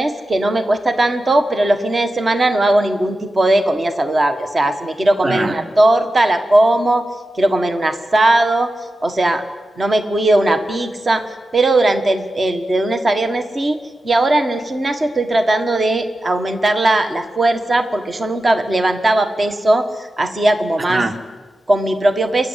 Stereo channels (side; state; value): both; normal; correlation 0.92